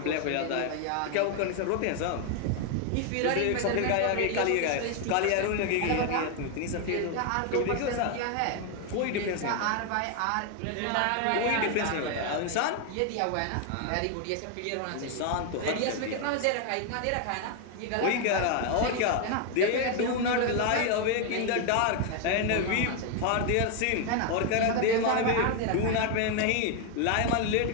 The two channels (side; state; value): both; different; correlation 0.01